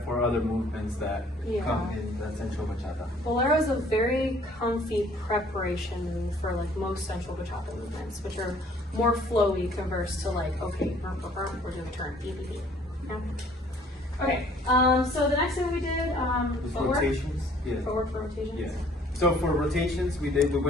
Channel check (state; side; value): normal; both; correlation 0.58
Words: for other movements that come in the sensual bachata. Bolero is a very comfy preparation move for like most sensual bachata movements, which are more flowy converse to like, okay, we're doing a turn, beep, beep, beep. Yeah. Okay, so the next thing we did, footwork. Rotations. Yeah. Footwork for rotations. Yeah. So for rotations, we